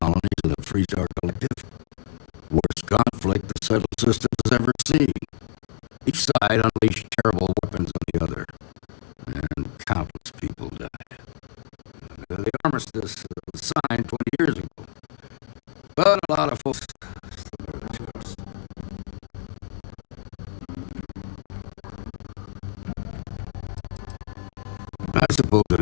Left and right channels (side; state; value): right; silent; digital silence